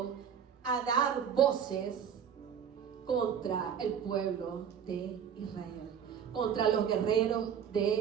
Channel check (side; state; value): left; quieter; 8.0 dB